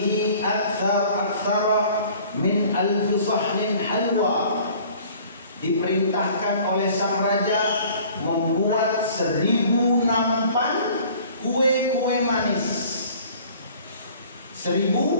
aktsara min alfi sahnin halwa. Diperintahkan oleh sang raja membuat 1000 nampan kue-kue manis. 1000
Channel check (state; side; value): inverted; both; correlation -0.51